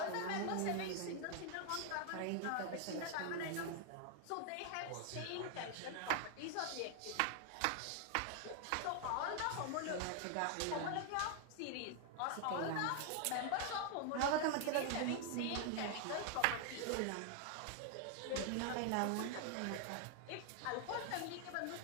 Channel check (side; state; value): both; different; correlation 0.00